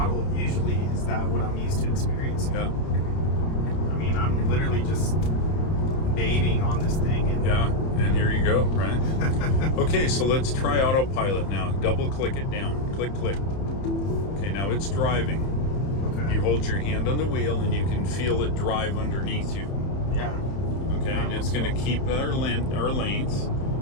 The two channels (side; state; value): right; late; 31 ms